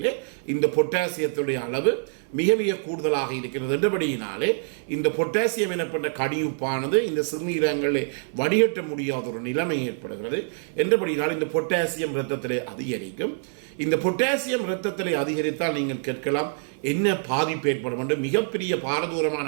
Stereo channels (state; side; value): silent; left; 61 dB below the other